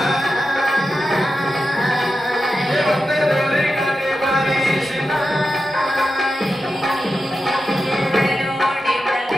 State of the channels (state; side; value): normal; both; correlation 0.90